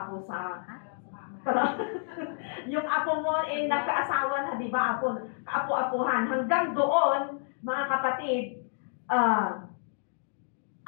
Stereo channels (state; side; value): silent; right; digital silence